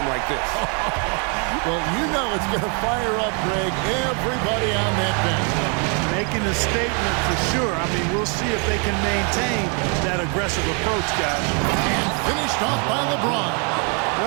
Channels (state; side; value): quieter; left; 36.2 dB